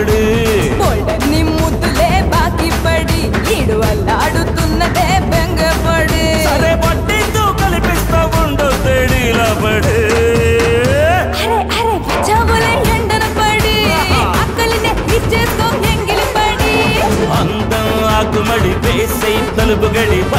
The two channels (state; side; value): identical; both; correlation 1.00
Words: బోల్డన్ని ముద్దులే బాకి పడి, ఈడు అల్లాడుతున్నదే బెంగపడి, సరే పట్టితో కల్పిస్తా ఉండు తేడీలా పడి, అరే చవులే ఎండన పడి, అక్కలినే ఇచ్చేసుకో ఎంగిలి పడి, అందం ఆకుమడి వేసై తలుపు గడి